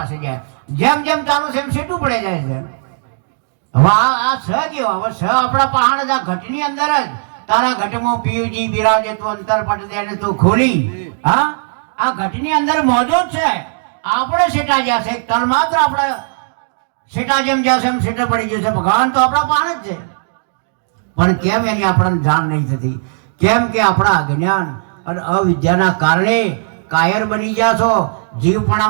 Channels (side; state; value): left; silent; digital silence